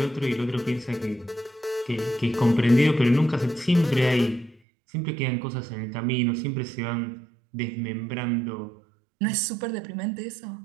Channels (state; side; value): drops out; left; at 4.6 s